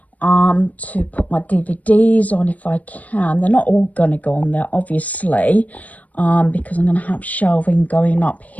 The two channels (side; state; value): right; late; 0.072 ms